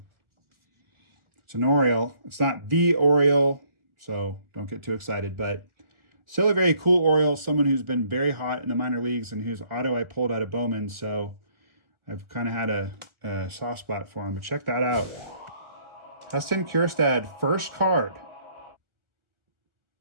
It's an Oriole. It's not the Oriole, so don't get too excited. But still a very cool Oriole. Someone who's been very hot in the minor leagues and whose auto I pulled out of Bowman. So I've kind of had a soft spot for him. But check that out. Heston Kjerstad, first card.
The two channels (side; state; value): left; late; 1.4 ms